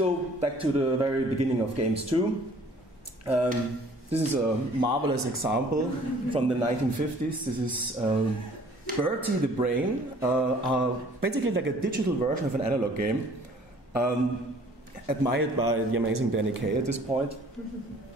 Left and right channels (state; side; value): normal; both; correlation 0.54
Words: back to the very beginning of games too. This is a marvelous example from the 1950s. This is Bertie the Brain, basically like a digital version of an analog game. Admired by the amazing Danny Kaye at this point.